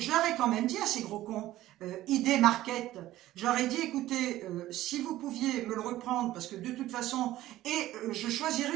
leur ai quand même dit à ces gros cons, Idée Market, je leur ai dit, écoutez, si vous pouviez me le reprendre, parce que de toute façon, je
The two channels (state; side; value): quieter; left; 15.0 dB